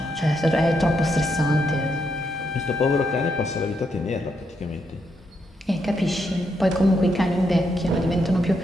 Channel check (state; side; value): normal; both; correlation 0.80